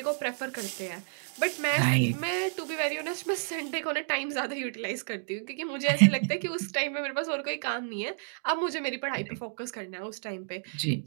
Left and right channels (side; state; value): left; silent; digital silence